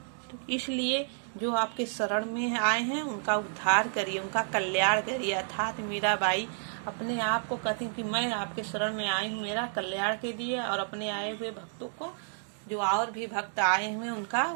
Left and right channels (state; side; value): silent; left; digital silence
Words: तो इसलिए जो आपके शरण में आए हैं उनका उद्धार करिए, उनका कल्याण करिए। अर्थात मीराबाई अपने आप को कहती कि मैं आपके शरण में आई हूँ, मेरा कल्याण कीजिए और अपने आए हुए भक्तों को, जो और भी भक्त आए हुए उनका